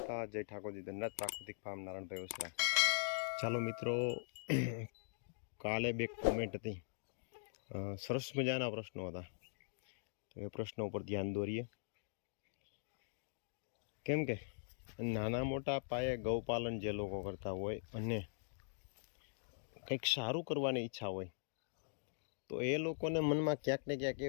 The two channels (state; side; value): silent; right; digital silence